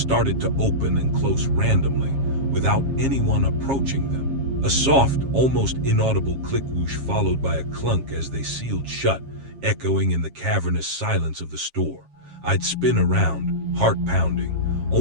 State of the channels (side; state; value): left; late; 7.4 ms